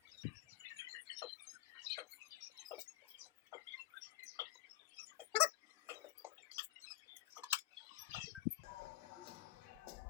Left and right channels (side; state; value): right; quieter; 14.3 dB